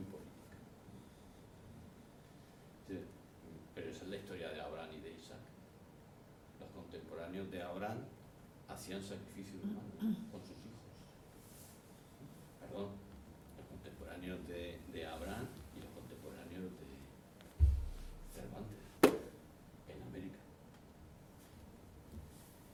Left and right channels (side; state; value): both; identical; correlation 1.00